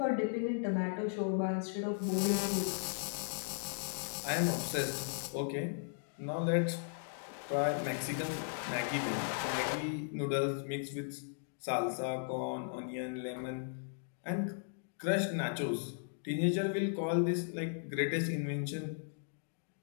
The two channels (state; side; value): silent; right; digital silence